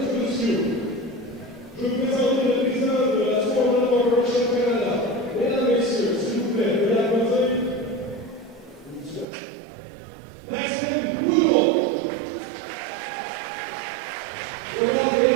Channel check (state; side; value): drops out; left; at 9.2 s